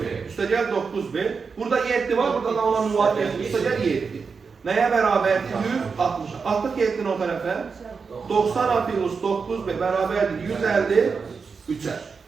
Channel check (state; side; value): quieter; left; 5.2 dB